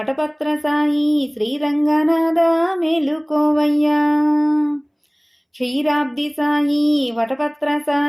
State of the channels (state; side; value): identical; both; correlation 1.00